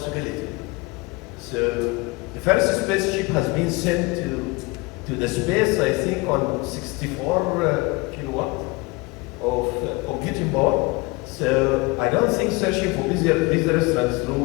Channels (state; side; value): quieter; right; 25.0 dB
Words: So the first spaceship has been sent to the space, I think, on 64 kilowatt of computing power. So I don't think searching for busy restaurants